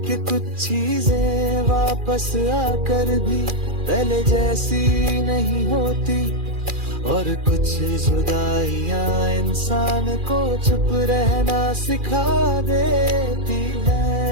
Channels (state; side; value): late; left; 2.4 ms